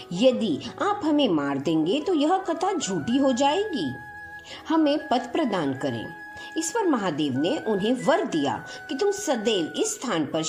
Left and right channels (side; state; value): both; identical; correlation 1.00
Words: यदि आप हमें मार देंगे तो यह कथा झूठी हो जाएगी। हमें पद प्रदान करें। इस पर महादेव ने उन्हें वर दिया कि तुम सदैव इस स्थान पर